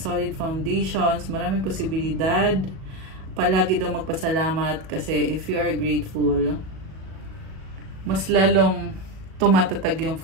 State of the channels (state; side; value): late; left; 37 ms